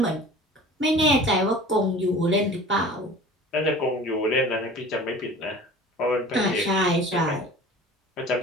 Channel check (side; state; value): both; normal; correlation 0.42